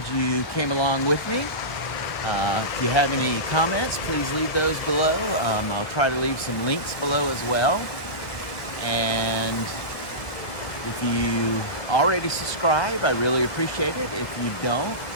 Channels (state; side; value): late; right; 1.5 ms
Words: you came along with me. If you have any comments, please leave those below. I'll try to leave some links below as well. And if you already subscribe, I really appreciate it. If you don't,